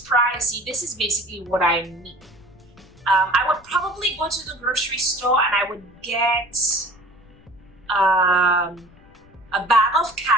pricey, this is basically what I mean. I would probably go to the grocery store and I would get a bag of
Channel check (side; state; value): left; noise; rumble, 27 dB below the sound